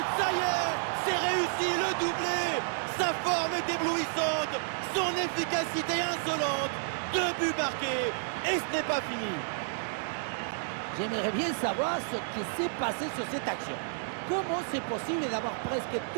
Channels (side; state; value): left; silent; digital silence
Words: ça y est, c'est réussi, le doublé. Sa forme est éblouissante, son efficacité insolente. 2 buts marqués et ce n'est pas fini. J'aimerais bien savoir ce qui s'est passé sur cette action. Comment c'est possible d'avoir presque